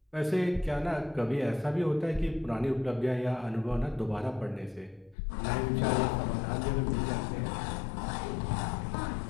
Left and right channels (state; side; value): drops out; right; at 5.2 s